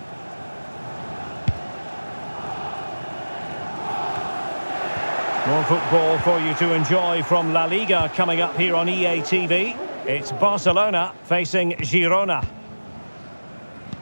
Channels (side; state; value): both; inverted; correlation -1.00